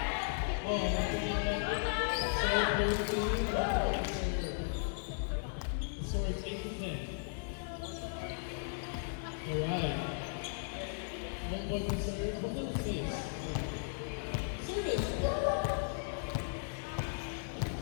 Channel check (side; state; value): right; silent; 54 dB below the other